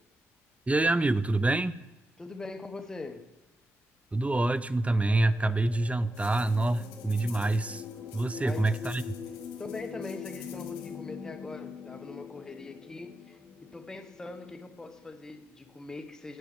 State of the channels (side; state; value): both; normal; correlation 0.89